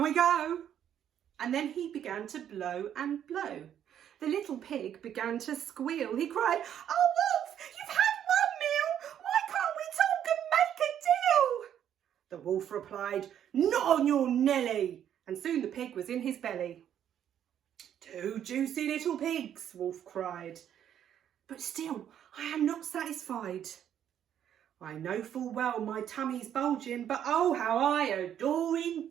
go." And then he began to blow and blow. The little pig began to squeal. He cried, "Oh, wolf, you've had one meal. Why can't we talk and make a deal?" The wolf replied, "Not on your Nelly." And soon the pig was in his belly. "Two juicy little pigs," Wolf cried. "But still, I am not satisfied. I know full well my tummy's bulging, but oh, how I adore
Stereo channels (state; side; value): quieter; left; 9.8 dB